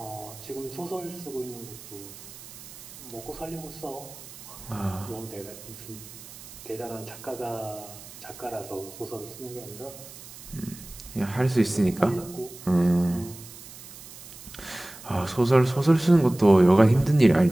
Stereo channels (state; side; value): noise; right; hiss, 16 dB below the sound